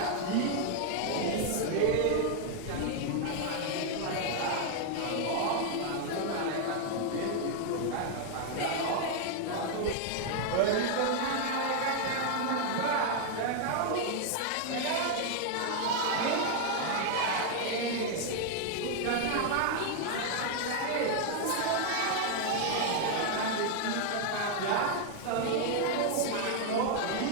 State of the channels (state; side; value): different; both; correlation 0.00